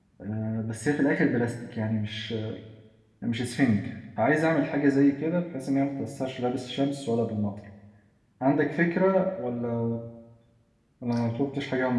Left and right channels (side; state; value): both; identical; correlation 1.00